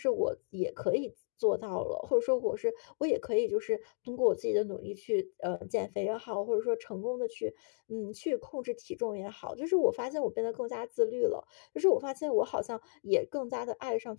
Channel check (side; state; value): right; silent; digital silence